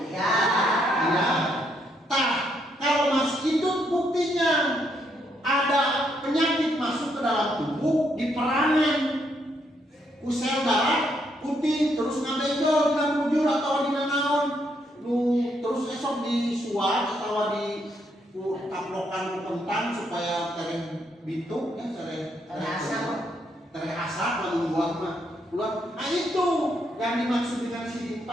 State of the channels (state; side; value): normal; both; correlation 0.75